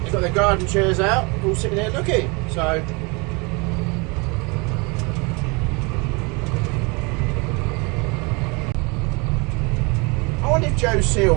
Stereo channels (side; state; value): left; quieter; 28.9 dB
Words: they've got their garden chairs out, all sitting there looking. So I wonder if Joe